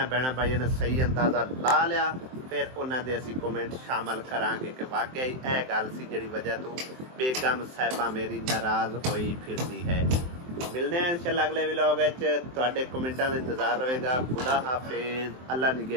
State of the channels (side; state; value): left; late; 23 ms